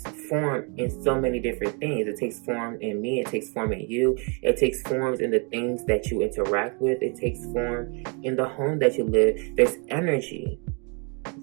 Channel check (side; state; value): left; quieter; 34.7 dB